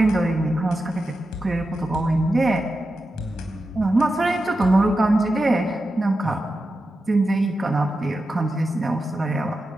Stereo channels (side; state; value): both; normal; correlation 0.90